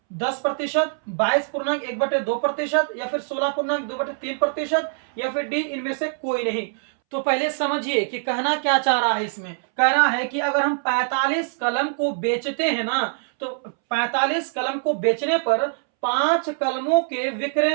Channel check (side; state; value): left; silent; 63 dB below the other